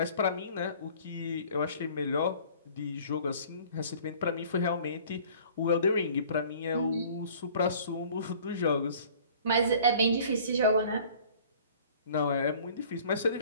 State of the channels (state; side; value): inverted; both; correlation -0.50